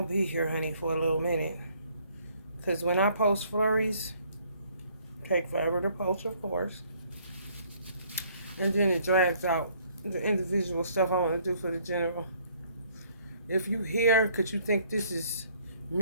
be here, honey, for a little minute. Cause when I post flurries, take forever to post, of course. And then it drags out the individual stuff I want to do for the general. If you hear, could you think this is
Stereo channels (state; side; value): inverted; both; correlation -0.63